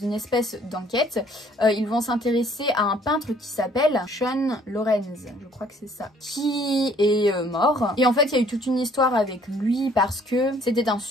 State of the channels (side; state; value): both; normal; correlation 0.60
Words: espèce d'enquête, ils vont s'intéresser à un peintre qui s'appelle Sean Lorenz, je crois que c'est ça, qui est mort. Et en fait, il y a eu toute une histoire avec lui parce que c'était un